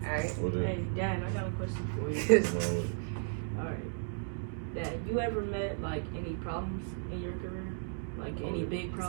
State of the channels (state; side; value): silent; left; digital silence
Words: right. Hey, Dad, I got a question for you. All right. Dad, you ever met like any problems in your career? Like any big